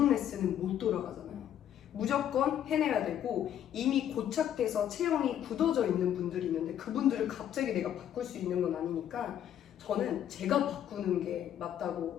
레슨은 못 돌아가잖아요. 무조건 해내야 되고 이미 고착돼서 체형이 굳어져 있는 분들이 있는데 그분들을 갑자기 내가 바꿀 수 있는 건 아니니까 저는 제가 바꾸는 게 맞다고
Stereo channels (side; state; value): right; quieter; 10.3 dB